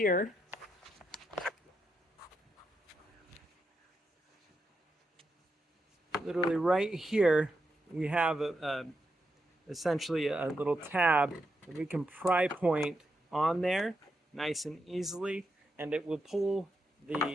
literally right here, we have essentially a little tab that we can pry point on there nice and easily, and it will pull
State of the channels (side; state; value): both; normal; correlation 0.84